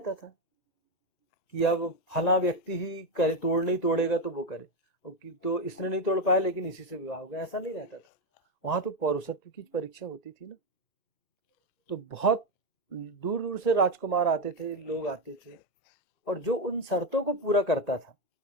था कि अब फला व्यक्ति ही करे, तोड़ नहीं तोड़ेगा तो वो करे, तो इसने नहीं तोड़ पाया लेकिन इसी से विवाह होगा, ऐसा नहीं रहता था। वहां तो पौरुषत्व की परीक्षा होती थी ना। तो बहुत दूर दूर से राजकुमार आते थे, लोग आते थे, और जो उन शर्तों को पूरा करता था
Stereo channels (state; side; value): late; right; 1.9 ms